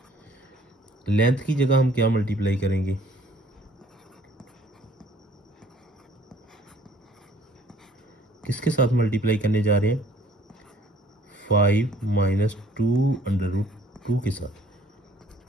लेंथ की जगह हम क्या मल्टीप्लाई करेंगे, किसके साथ मल्टीप्लाई करने जा रहे हैं, 5 माइनस 2 अंडर रूट 2 के साथ।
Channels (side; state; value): both; normal; correlation 0.58